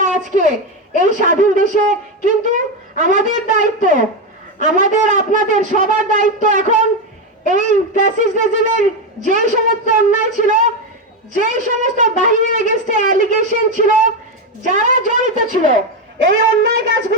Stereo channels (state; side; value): normal; both; correlation 0.11